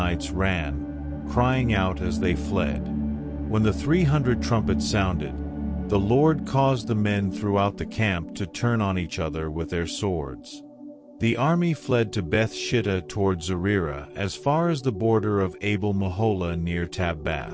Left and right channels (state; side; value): identical; both; correlation 1.00